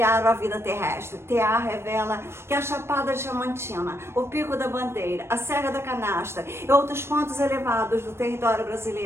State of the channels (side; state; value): left; late; 0.12 ms